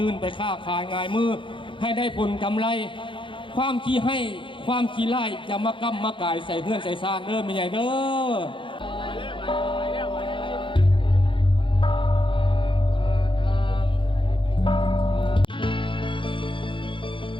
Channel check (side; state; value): right; late; 0.24 ms